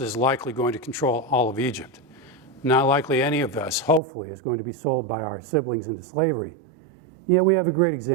is likely going to control all of Egypt. Not likely any of us, hopefully, is going to be sold by our siblings into slavery. Yet we have a great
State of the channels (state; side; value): drops out; left; at 4.0 s